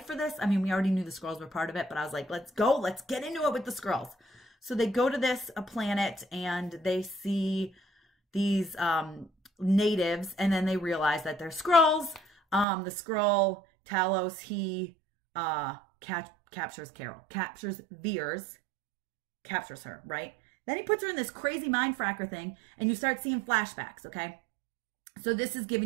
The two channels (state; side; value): drops out; left; at 12.7 s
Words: for this. I mean, we already knew the Skrulls were part of it, but I was like, let's go. Let's get into it with the Skrulls. So they go to this planet and they see these natives, and then they realize that they're Skrulls. The Skrull, Talos, he captures Carol, captures Veers, captures her, right? Then he puts her in this crazy mind fracker thing, and you start seeing flashbacks, okay? So this is